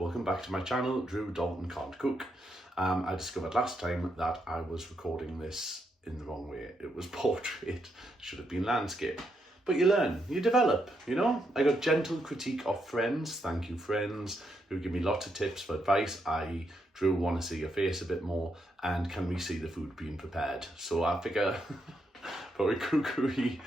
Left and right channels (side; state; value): both; normal; correlation 0.80